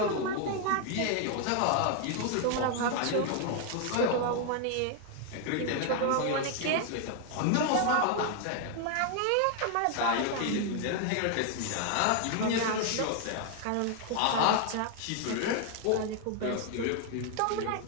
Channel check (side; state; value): both; different; correlation 0.00